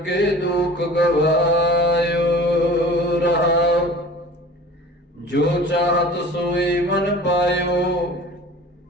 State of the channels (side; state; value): both; normal; correlation 0.42